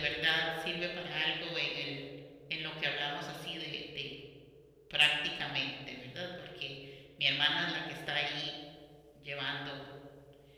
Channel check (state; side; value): identical; both; correlation 1.00